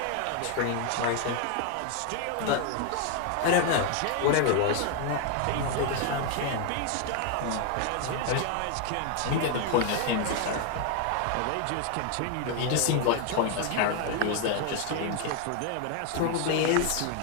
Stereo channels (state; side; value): different; both; correlation 0.01